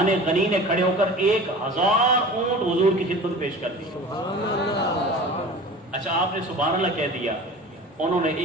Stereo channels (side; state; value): both; normal; correlation 0.38